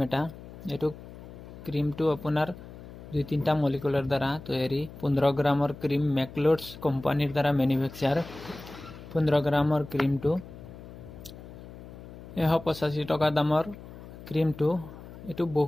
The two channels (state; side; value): noise; left; hum, 15 dB below the sound